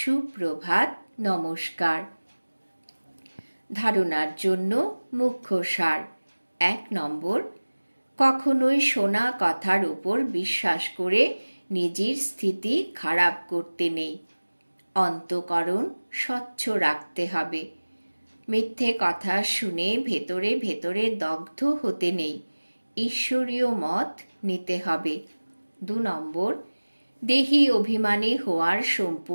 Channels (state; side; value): inverted; both; correlation -1.00